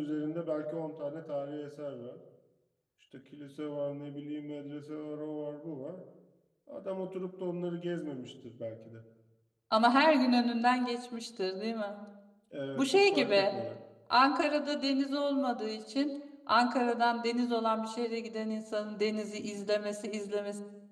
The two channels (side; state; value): both; identical; correlation 1.00